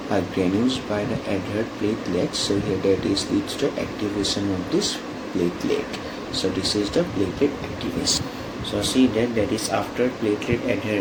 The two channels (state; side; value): identical; both; correlation 1.00